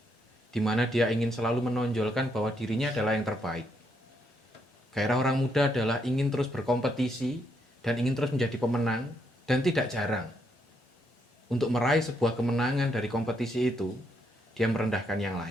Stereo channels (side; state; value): both; normal; correlation 0.76